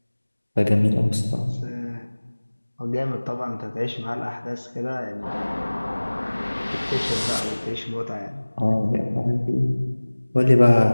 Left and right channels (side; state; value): both; inverted; correlation -1.00